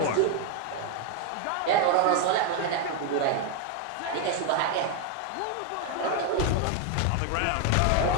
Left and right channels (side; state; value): both; different; correlation 0.01